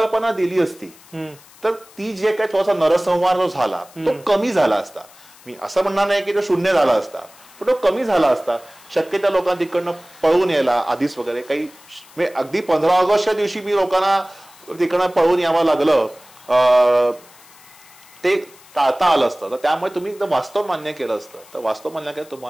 दिली असती तर ती जे काही थोडासा नरसंहार जो झाला तो कमी झाला असता. मी असं म्हणणार नाही की तो शून्य झाला असता, पण तो कमी झाला असता. शक्य त्या लोकांना तिकडनं पळून यायला आधीच वगैरे काही, म्हणजे अगदी 15 ऑगस्टच्या दिवशी मी लोकांना तिकडनं पळून यावं लागलं, ते टाळता आलं असतं. तर त्यामुळे तुम्ही एकदम वास्तव मान्य केलं असतं, तर वास्तव मान्य केलं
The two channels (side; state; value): left; noise; hiss, 24 dB below the sound